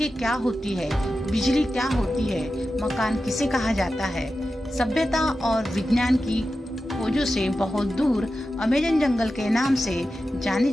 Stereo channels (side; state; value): both; normal; correlation 0.92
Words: क्या होती है, बिजली क्या होती है, मकान किसे कहा जाता है। सभ्यता और विज्ञान की खोजों से बहुत दूर अमेज़न जंगल के नाम से जानी